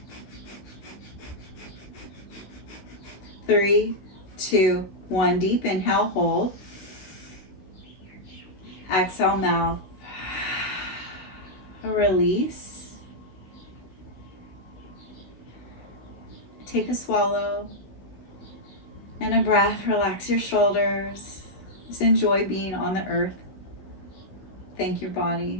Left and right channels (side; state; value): right; late; 16 ms